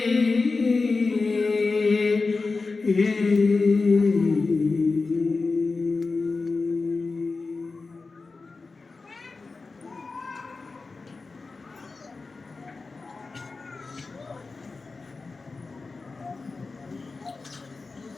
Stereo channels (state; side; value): quieter; right; 4.0 dB